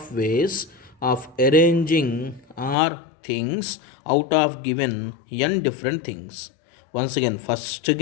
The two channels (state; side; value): drops out; right; at 2.8 s